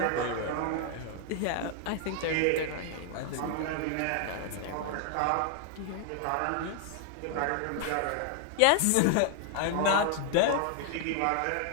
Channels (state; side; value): different; both; correlation 0.00